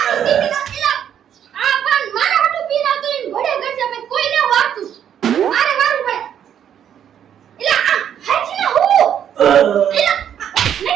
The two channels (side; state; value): left; quieter; 9.4 dB